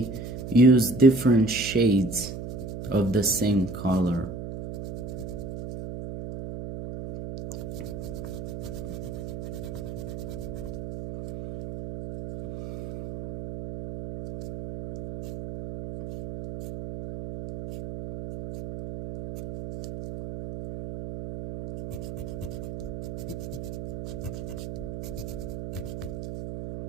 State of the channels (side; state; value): right; noise; hum, 8 dB below the sound